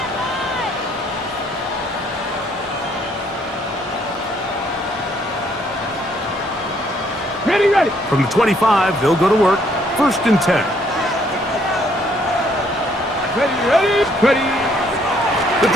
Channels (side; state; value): both; normal; correlation 0.67